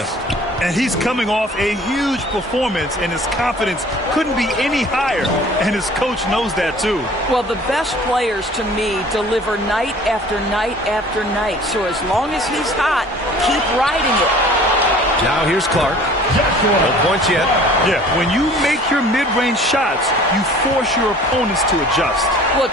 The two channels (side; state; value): both; normal; correlation 0.49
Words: And he's coming off a huge performance, and his confidence couldn't be any higher. And his coach knows that, too. Well, the best players, to me, deliver night after night after night. So as long as he's hot, keep riding it. Now here's Clark. No points yet. Yeah, when you make your mid-range shots, you force your opponents to adjust. Well,